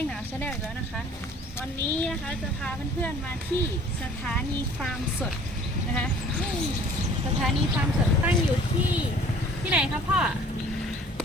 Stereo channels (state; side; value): normal; both; correlation 0.52